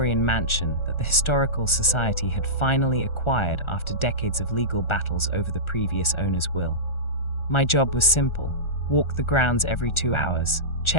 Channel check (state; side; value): late; right; 1.4 ms